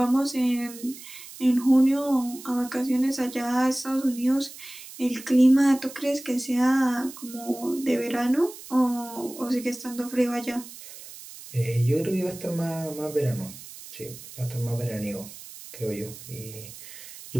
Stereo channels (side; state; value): right; noise; hiss, 15 dB below the sound